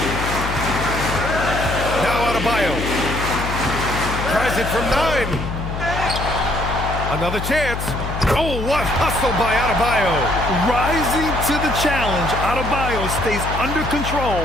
Now Adebayo. Tries it from 9. Another chance. Oh, what hustle by Adebayo. Rising to the challenge, Adebayo stays under control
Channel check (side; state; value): left; noise; hum, 5 dB below the sound